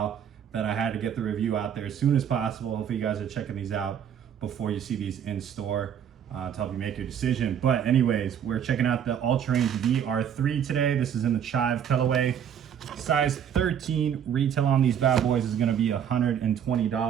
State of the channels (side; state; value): left; quieter; 8.7 dB